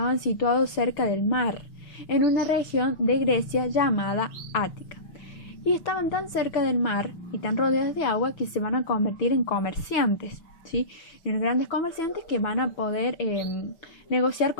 situados cerca del mar, en una región de Grecia llamada Ática. Y estaban tan cerca del mar y tan rodeados de agua que se van a convertir en comerciantes, ¿sí? En grandes comerciantes que van a poder negociar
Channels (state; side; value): late; right; 6.2 ms